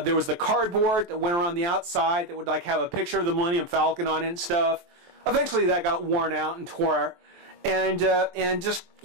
was the cardboard that went around the outside that would like have a picture of the Millennium Falcon on it and stuff. Eventually, that got worn out and tore, and just,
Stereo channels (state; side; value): late; left; 23 ms